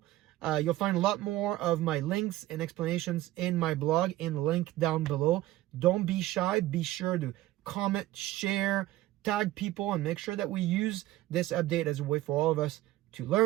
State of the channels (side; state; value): left; quieter; 16.0 dB